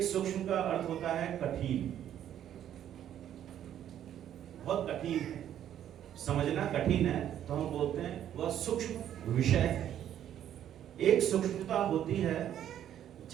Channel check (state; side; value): quieter; left; 10.7 dB